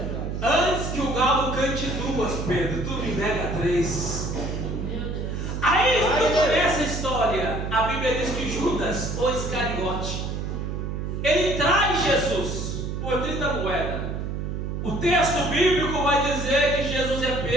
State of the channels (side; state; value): right; noise; hum, 4 dB below the sound